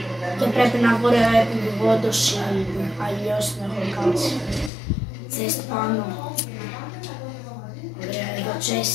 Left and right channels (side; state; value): right; drops out; at 4.7 s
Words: Και πρέπει να βγω επιβιβόντως ή αλλιώς την έχω κάτσει. Chest πάνω. Ωραία, εδώ